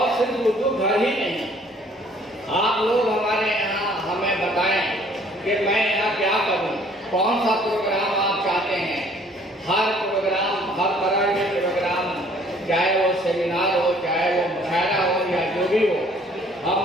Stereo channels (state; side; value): normal; both; correlation 0.58